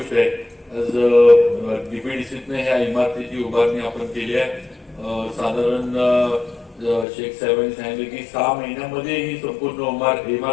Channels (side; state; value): right; drops out; at 7.1 s